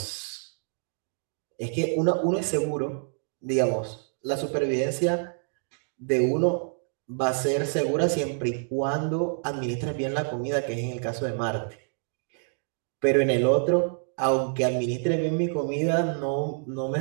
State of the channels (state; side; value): silent; left; digital silence